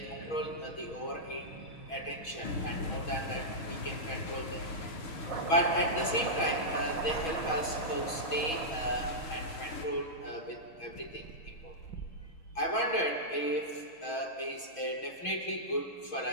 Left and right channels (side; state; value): right; late; 6.2 ms